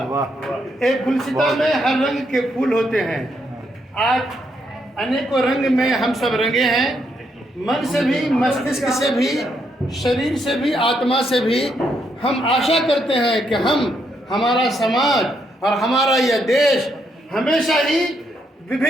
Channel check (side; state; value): both; normal; correlation 0.77